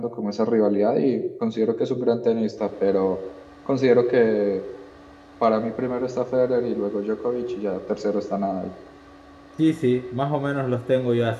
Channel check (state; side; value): identical; both; correlation 1.00